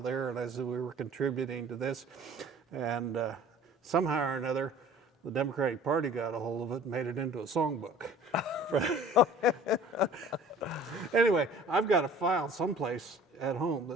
there, and I said we were contributing to this. And somehow or another, the Democratic Party got a hold of it and made it into a songbook. Anyway, I've got a file someplace at home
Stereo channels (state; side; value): normal; both; correlation 0.47